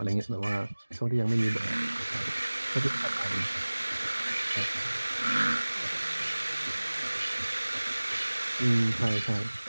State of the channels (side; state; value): both; inverted; correlation -1.00